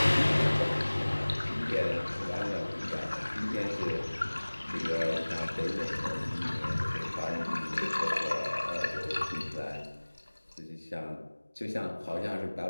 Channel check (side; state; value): both; inverted; correlation -1.00